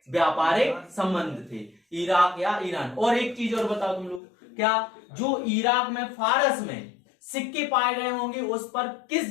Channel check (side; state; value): right; drops out; at 4.2 s